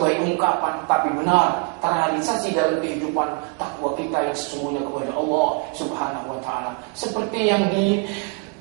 ungkapan, tapi benar terrealisasi dalam kehidupan takwa kita yang sesungguhnya kepada Allah Subhanahu wa ta'ala. Seperti yang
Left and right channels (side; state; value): left; quieter; 34.9 dB